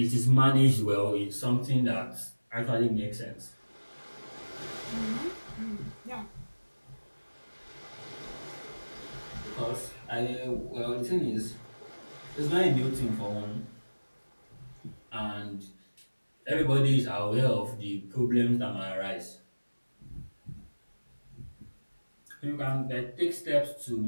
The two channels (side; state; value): both; inverted; correlation -1.00